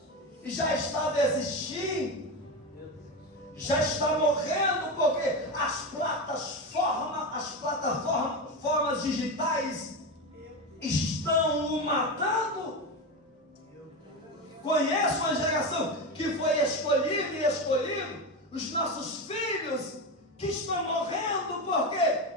e já está desistindo, já está morrendo, porque as plataformas digitais estão o matando. Conheço uma geração que foi escolhido, os nossos filhos que estão morrendo porque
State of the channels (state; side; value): normal; both; correlation 0.18